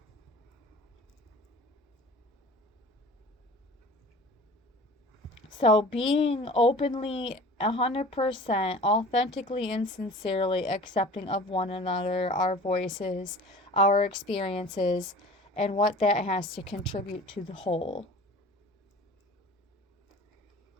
So being openly 100% authentically and sincerely accepting of one another, our voices, our experiences, and what that has to contribute to the whole.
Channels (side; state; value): both; normal; correlation 0.42